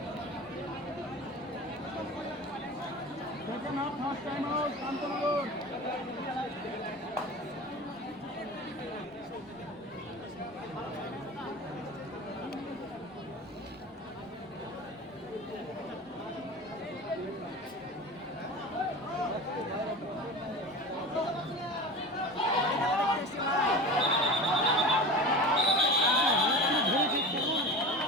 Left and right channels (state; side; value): normal; both; correlation 0.32